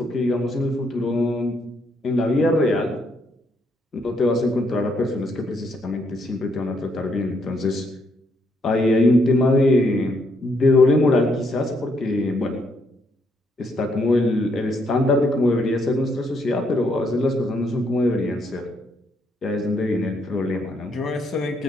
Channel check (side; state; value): both; normal; correlation 0.74